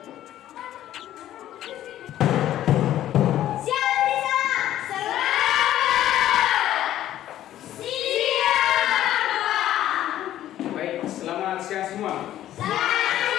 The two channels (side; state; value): right; quieter; 12.7 dB